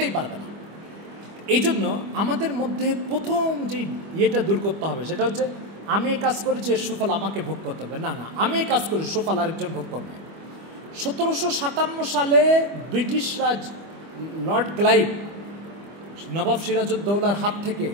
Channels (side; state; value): left; late; 25 ms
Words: পারবে না। এই জন্য আমাদের মধ্যে প্রথম যে ইয়েটা দূর করতে হবে সেটা হচ্ছে আমি এই কাজ করেছি, এর সুফল আমাকে ভোগ করতে হবে না, আমি এই কাজ করি, সুফল আরেকজন ভোগ করবে। 1757 সালে ব্রিটিশ রাজ লর্ড ক্লাইভ নবাব সিরাজউদ্দৌলার হাত থেকে